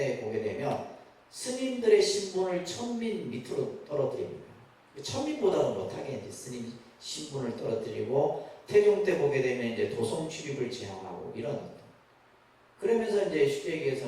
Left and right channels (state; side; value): identical; both; correlation 1.00